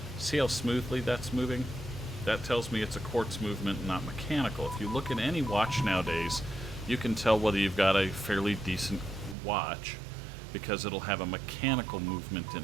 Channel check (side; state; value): left; drops out; at 9.3 s